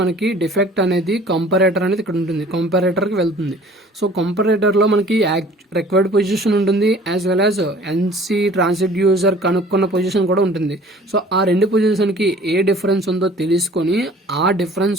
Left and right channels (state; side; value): normal; both; correlation 0.50